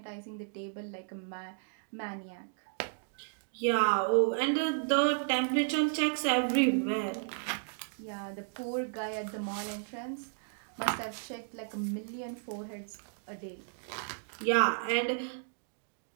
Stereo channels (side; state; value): left; silent; digital silence